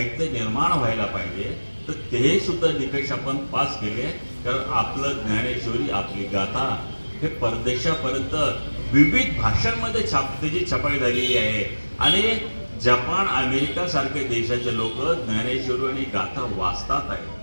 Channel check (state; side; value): inverted; both; correlation -1.00